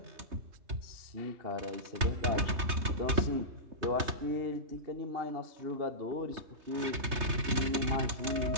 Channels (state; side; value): late; left; 3.3 ms